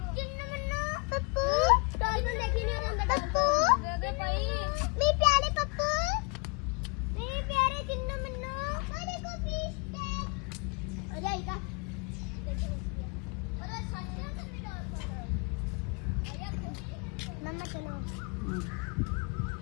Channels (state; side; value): quieter; right; 30.6 dB